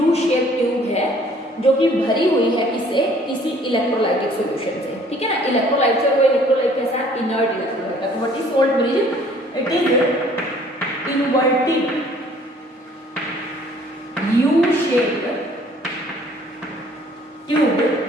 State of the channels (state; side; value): normal; both; correlation 0.57